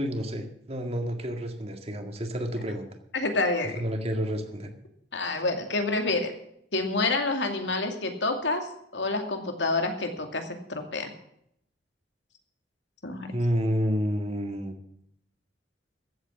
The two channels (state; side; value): normal; both; correlation 0.23